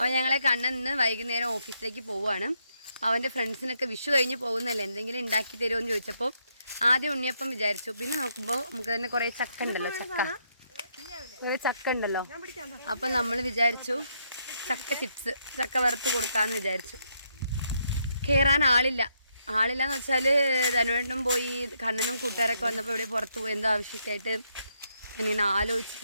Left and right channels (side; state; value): both; inverted; correlation -0.76